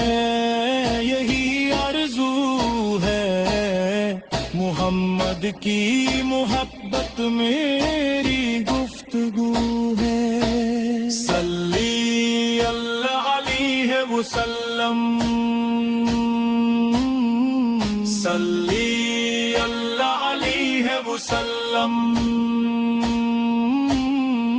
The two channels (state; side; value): identical; both; correlation 1.00